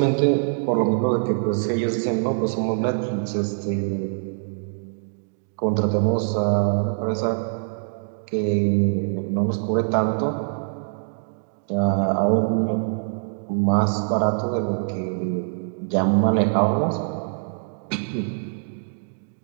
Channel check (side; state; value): left; silent; digital silence